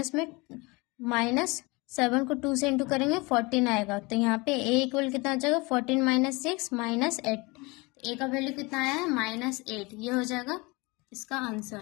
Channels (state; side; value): quieter; right; 25.6 dB